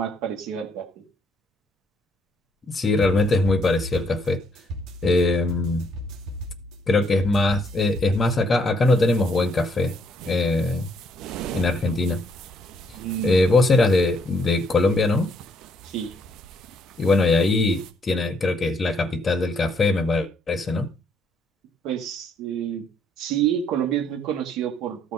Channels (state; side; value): normal; both; correlation 0.70